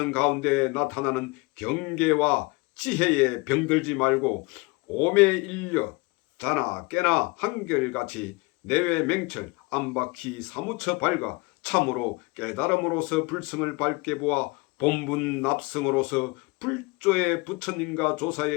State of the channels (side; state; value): right; quieter; 26.4 dB